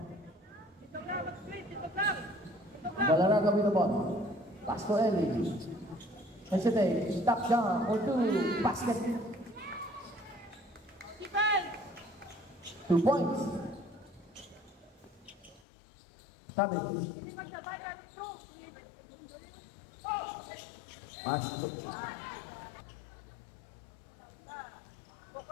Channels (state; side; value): drops out; right; at 15.6 s